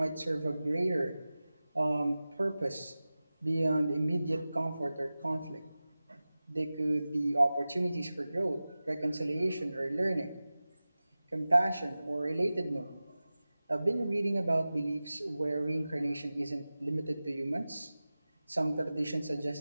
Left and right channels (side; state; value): both; inverted; correlation -0.96